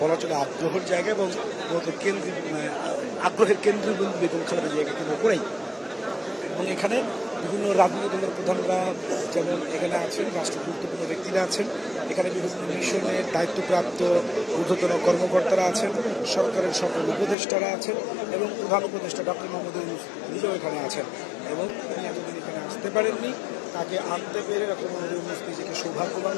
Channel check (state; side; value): drops out; right; at 17.4 s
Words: চলে আগ্রহের জায়গা এবং আগ্রহের কেন্দ্রবিন্দু বেগম খালেদা জিয়াকে কেন্দ্র করেই। এবং এখানে বিভিন্ন রাজনৈতিক দলের প্রধানরা যেমন এখানে আছেন, রাষ্ট্র গুরুত্বপূর্ণ ব্যক্তিরা আছেন, এখানে বিভিন্ন মিশনের দায়িত্বপ্রাপ্ত ঊর্ধ্বতন কর্মকর্তারা আছেন, সরকারের সকল উপদেষ্টারা আছেন এবং প্রধান উপদেষ্টা ডক্টর মোহাম্মদ ইউনূস নিজেও এখানে আছেন এবং তিনি এতদিন এখানে আসতে পারেননি। তাকে আনতে পেরে ডক্টর মোহাম্মদ ইউনূস নিজেকে সৌভাগ্যবান